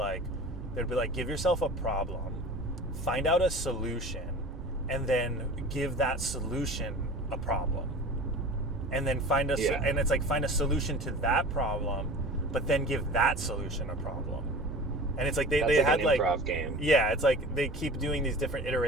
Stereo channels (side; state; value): both; normal; correlation 0.38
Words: give yourself a problem, find out a solution, and then give that solution a problem, and then find and it's like find a solution to that problem, but then give that solution a problem. And it's like they had an improv game. Yeah, it's like they keep doing these different